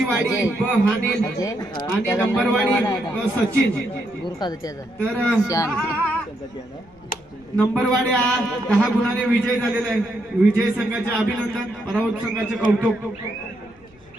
वाडी व हानील आणि नंबरवाडी सचिन. तर नंबरवाडी 10 गुणाने विजय झालेला आहे. विजय संघाचे अभिनंदन, पराभूत संघाचे कौतुक.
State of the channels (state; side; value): noise; left; rumble, 28 dB below the sound